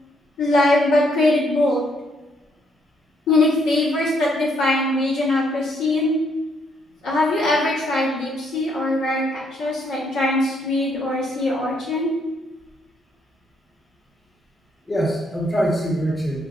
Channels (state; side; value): normal; both; correlation 0.72